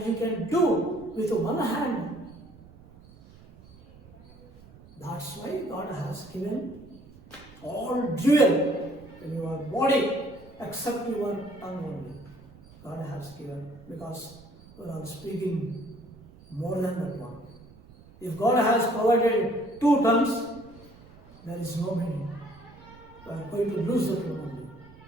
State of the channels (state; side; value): noise; right; rumble, 22 dB below the sound